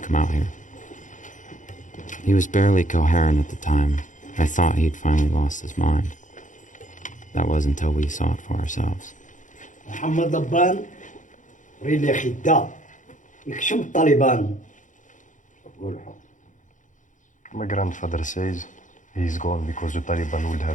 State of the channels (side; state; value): right; late; 0.37 ms